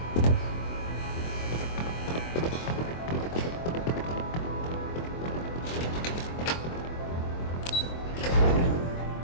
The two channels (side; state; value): right; late; 24 ms